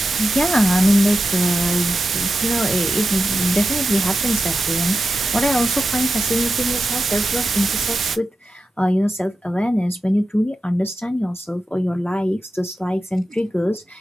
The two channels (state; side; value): normal; both; correlation 0.91